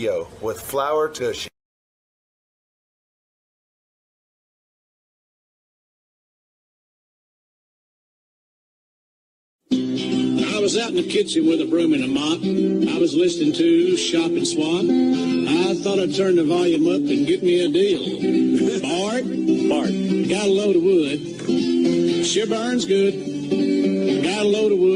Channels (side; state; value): both; identical; correlation 1.00